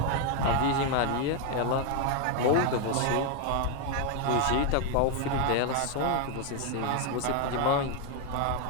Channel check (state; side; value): different; both; correlation 0.01